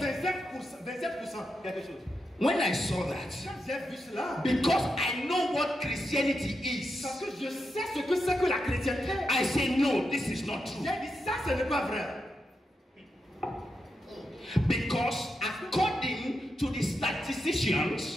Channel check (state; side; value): normal; both; correlation 0.86